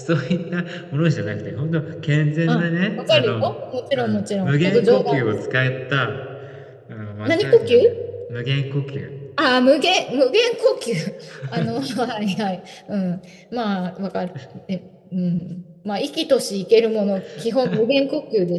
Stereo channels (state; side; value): identical; both; correlation 1.00